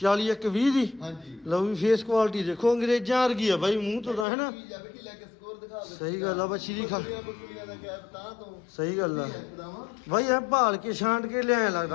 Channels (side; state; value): right; drops out; at 4.2 s